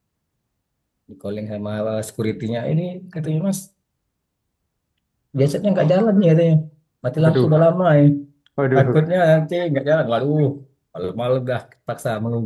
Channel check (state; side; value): identical; both; correlation 1.00